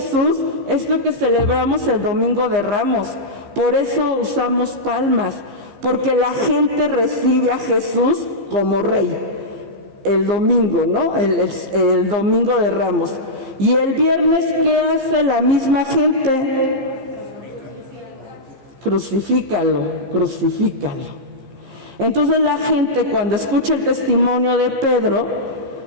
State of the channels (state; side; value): late; left; 15 ms